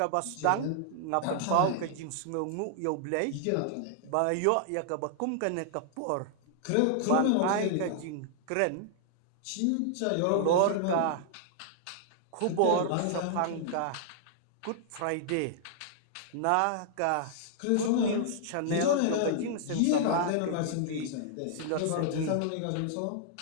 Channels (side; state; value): both; different; correlation -0.01